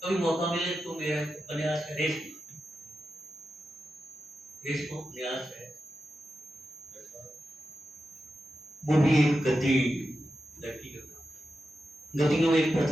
कभी मौका मिले तो मेरा उपन्यास है रेशमा उपन्यास है। वो भी एक गद्दी लड़की का, गद्दियों में एक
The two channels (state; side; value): normal; both; correlation 0.90